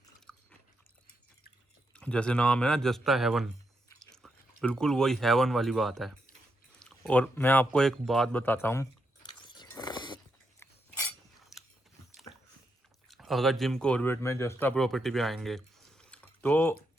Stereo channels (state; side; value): normal; both; correlation 0.82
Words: जैसे नाम है ना जस्टा हेवन, बिल्कुल वही हेवन वाली बात है। और मैं आपको एक बात बताता हूँ, अगर जिम कॉर्बेट में जस्टा प्रॉपर्टी पे आएंगे तो